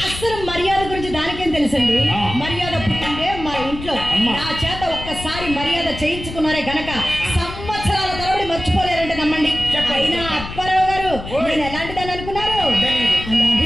అసలు మర్యాద గురించి దానికేం తెలుసండి? మర్యాద పుట్టిందే మా ఇంట్లో. నా చేత ఒక్కసారి మర్యాద చేయించుకున్నారే గనక సంవత్సరాల తరబడి మర్చిపోలేరంటే నమ్మండి. అయినా అప్పారావు గారు నేను ఎలాంటి దాన్ని అనుకున్నారు?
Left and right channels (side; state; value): left; noise; rumble, 10 dB below the sound